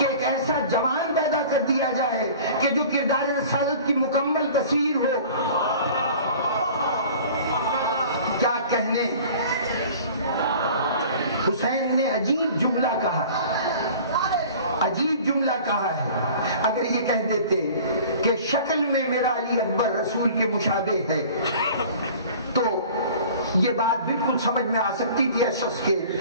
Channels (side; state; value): both; inverted; correlation -0.44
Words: ایک ایسا جوان پیدا کر دیا جائے کہ جو کردار رسالت کی مکمل تصویر ہو۔ کیا کہنے، حسین نے عجیب جملہ کہا، عجیب جملہ کہا ہے۔ اگر یہ کہہ دیتے کہ شکل میں میرا علی اکبر رسول کے مشابہ ہے تو یہ بات بالکل سمجھ میں آ سکتی تھی اس شخص کے،